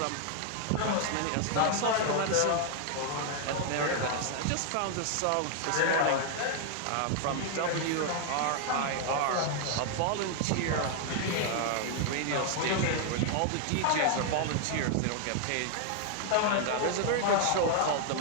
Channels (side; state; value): both; different; correlation 0.00